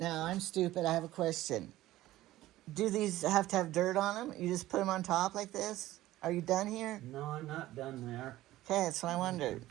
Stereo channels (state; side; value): quieter; left; 15.7 dB